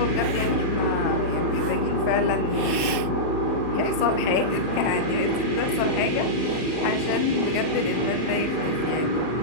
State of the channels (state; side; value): late; right; 39 ms